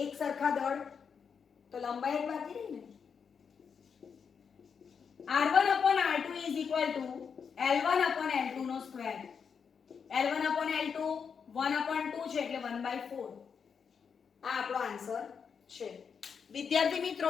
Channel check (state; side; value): quieter; right; 6.4 dB